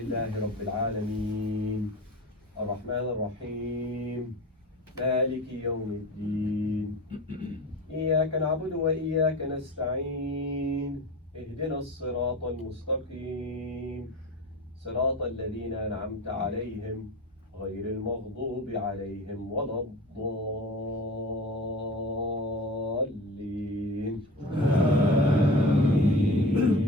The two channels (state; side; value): normal; both; correlation 0.33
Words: رب العالمين الرحمن الرحيم مالك يوم الدين إياك نعبد وإياك نستعين اهدنا الصراط المستقيم صراط الذين أنعمت عليهم غير المغضوب عليهم ولا الضالين.